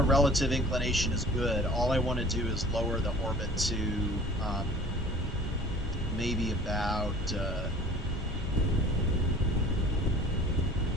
relative inclination is good. All I want to do is lower the orbit to maybe about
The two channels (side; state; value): both; normal; correlation 0.47